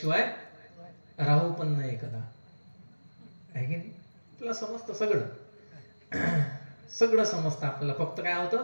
राहू पण नाही कदा, आहे की नाही. आपल्याला समजतं सगळं समजतं आपल्याला, फक्त काय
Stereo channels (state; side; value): inverted; both; correlation -1.00